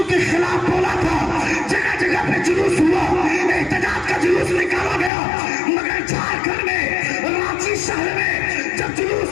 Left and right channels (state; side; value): drops out; right; at 5.1 s